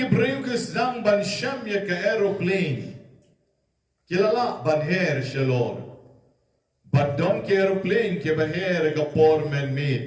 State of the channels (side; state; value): both; identical; correlation 1.00